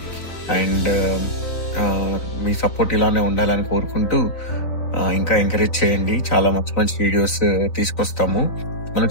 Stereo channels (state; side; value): late; right; 3.9 ms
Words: అండ్ మీ సపోర్ట్ ఇలానే ఉండాలని కోరుకుంటూ ఇంకా ఎంకరేజ్ చేయండి. చాలా మంచి మంచి వీడియోస్ తీసుకొస్తాము. మన